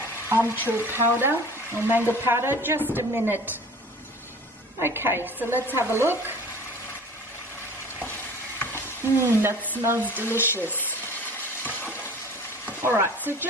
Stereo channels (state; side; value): normal; both; correlation 0.43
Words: Amchur powder or mango powder. Just a minute. Okay, so let's have a look. That smells delicious. Alright, so